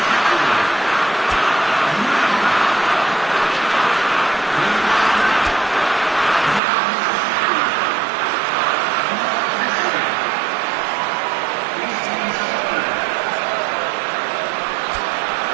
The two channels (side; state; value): left; drops out; at 6.6 s